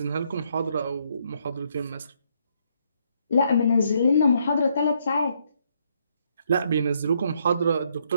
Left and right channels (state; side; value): inverted; both; correlation -0.72